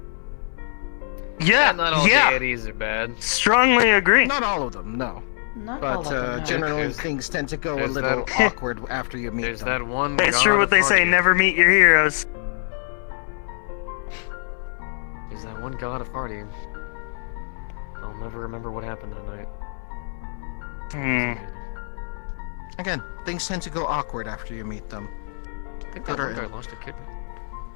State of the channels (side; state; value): right; silent; digital silence